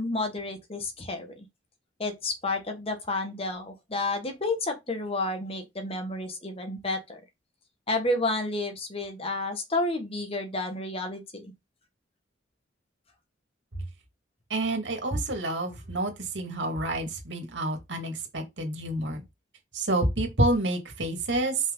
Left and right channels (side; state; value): both; normal; correlation 0.20